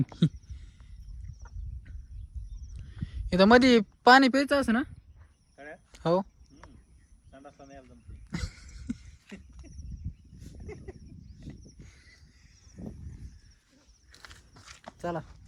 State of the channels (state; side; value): identical; both; correlation 1.00